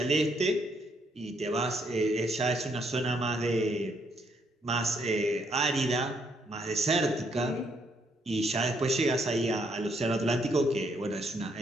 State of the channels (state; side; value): normal; both; correlation 0.72